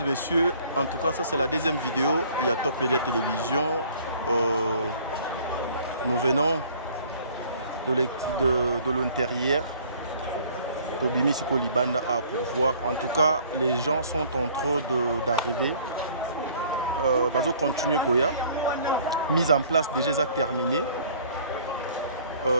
et messieurs, en tout cas ça c'est la deuxième vidéo. Il y a Top Media Télévision. Nous venons de l'intérieur. Tobimi Siko Libanda pour voir. En tout cas, les gens sont en train d'arriver. Bazo continue Koya. Mise en place déjà terminée.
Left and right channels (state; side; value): inverted; both; correlation -0.54